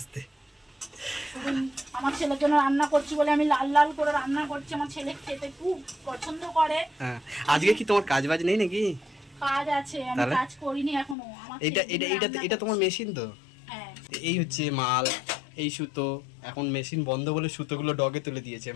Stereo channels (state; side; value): drops out; right; at 11.2 s